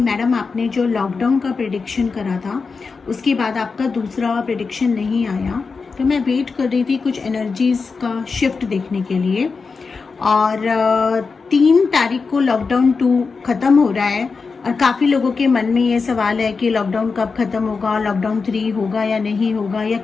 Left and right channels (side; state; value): right; quieter; 4.7 dB